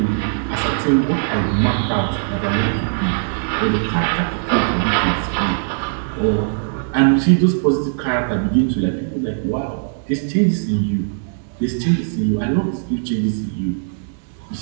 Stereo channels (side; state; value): left; silent; digital silence